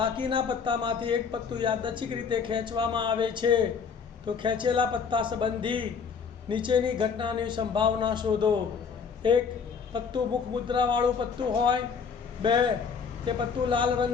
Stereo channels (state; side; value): quieter; right; 6.0 dB